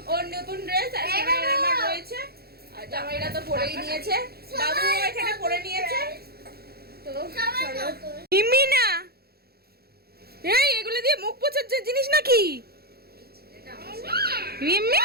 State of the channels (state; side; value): late; left; 0.46 ms